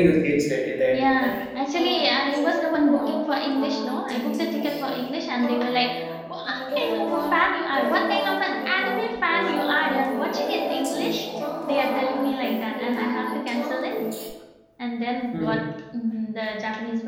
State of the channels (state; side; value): identical; both; correlation 1.00